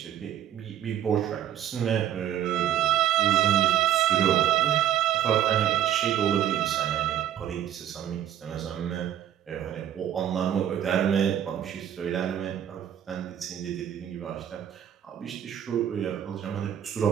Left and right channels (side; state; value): left; quieter; 10.9 dB